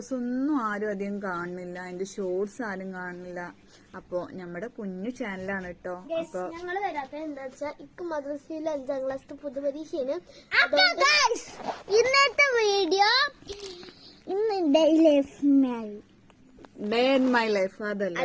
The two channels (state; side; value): identical; both; correlation 1.00